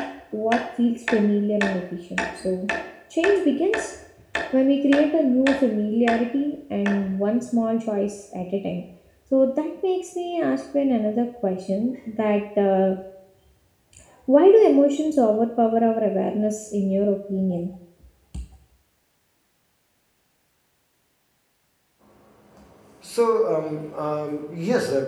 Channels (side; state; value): both; identical; correlation 1.00